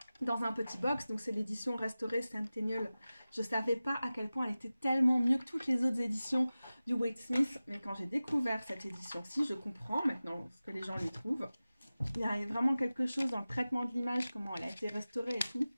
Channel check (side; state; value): both; inverted; correlation -0.96